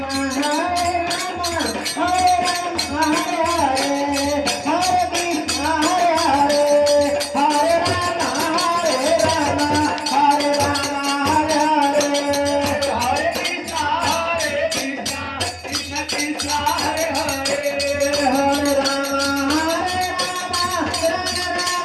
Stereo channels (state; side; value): identical; both; correlation 1.00